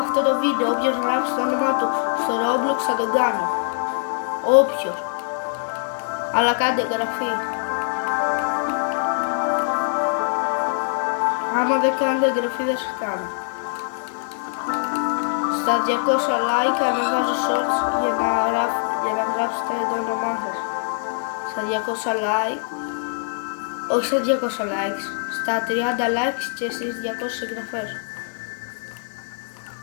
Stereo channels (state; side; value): silent; right; digital silence